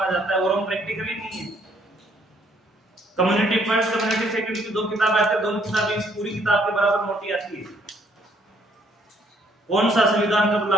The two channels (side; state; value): both; normal; correlation 0.66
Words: जाता है, और हम प्रैक्टिकल ही नहीं है। कम्युनिटी फर्स्ट, कम्युनिटी सेकंड की दो किताब आती है, दोनों किताबें इस पूरी किताब के बराबर मोटी आती है। कौन सा संविधान कब